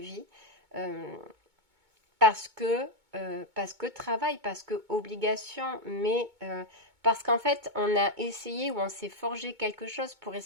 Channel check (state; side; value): late; left; 2.2 ms